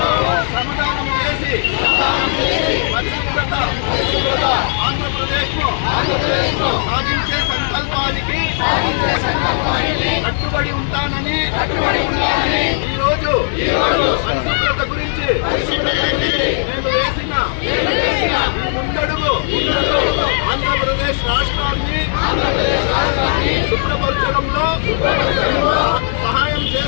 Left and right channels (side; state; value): right; silent; digital silence